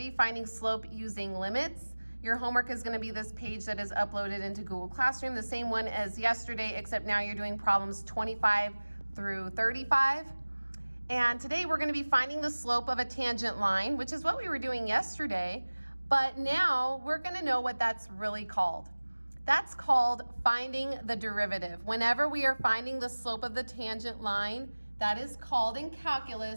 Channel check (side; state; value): both; inverted; correlation -1.00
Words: finding slope using limits. Your homework is gonna be this page that is uploaded into Google Classroom, the same one as yesterday, except now you're doing problems 25 through 35. And today we're going to be finding the slope of a tangent line, which is what we were doing yesterday, but now we're going to know what that's really called. That's called finding the derivative. Whenever we are finding the slope of the tangent line, that is called in